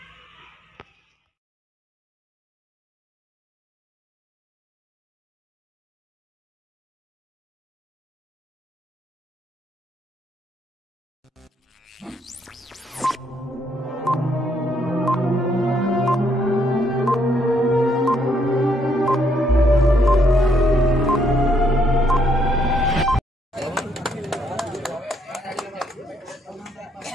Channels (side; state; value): both; normal; correlation 0.72